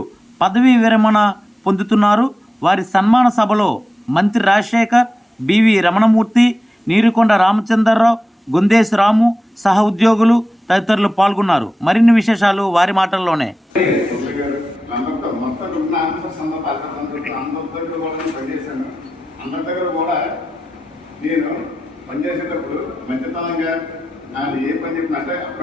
పదవీ విరమణ పొందుతున్నారు. వారి సన్మాన సభలో మంత్రి రాజశేఖర్, BV రమణమూర్తి, నీరుకొండ రామచంద్రరావు, గుందేశ్ రాము సహ ఉద్యోగులు తదితరులు పాల్గొన్నారు. మరిన్ని విశేషాలు వారి మాటల్లోనే. నేను పనిచేసేటప్పుడు మంచితనంగా నాకు ఏ పని చెప్పినట్టే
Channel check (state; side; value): normal; both; correlation 0.93